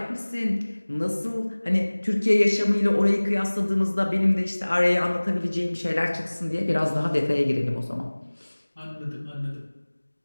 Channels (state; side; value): inverted; both; correlation -1.00